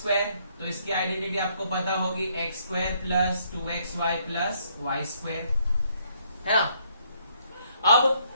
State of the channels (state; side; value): inverted; both; correlation -0.69